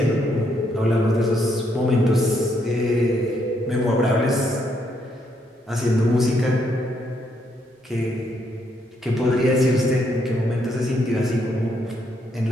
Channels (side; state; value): both; normal; correlation 0.74